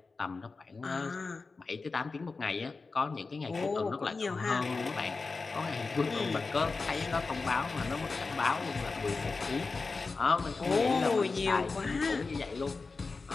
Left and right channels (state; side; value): quieter; right; 4.1 dB